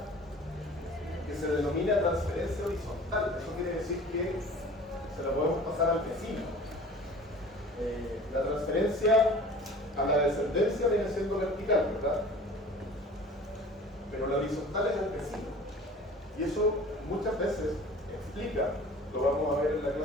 que se denomina transferencia horizontal. Eso quiere decir que se la podemos pasar al vecino. La transferencia a la descendencia viene siendo vertical, ¿verdad? Pero la horizontal es al vecino. Y eso muchas veces explica, lo vamos a ver en la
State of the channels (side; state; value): both; normal; correlation 0.43